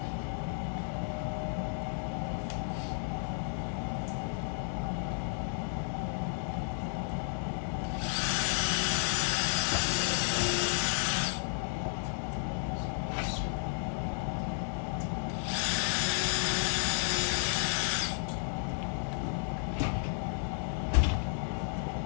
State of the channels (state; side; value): silent; right; 56 dB below the other